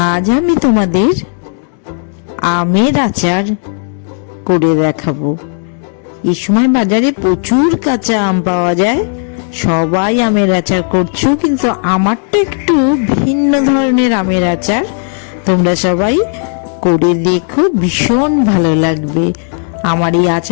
আজ আমি তোমাদের আমের আচার করে দেখাবো। এই সময় বাজারে প্রচুর কাঁচা আম পাওয়া যায়, সবাই আমের আচার করছো, কিন্তু আমারটা একটু ভিন্ন ধরনের আমের আচার। তোমরা সবাই করে দেখো, ভীষণ ভালো লাগবে। আমার এই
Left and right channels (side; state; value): right; silent; 57 dB below the other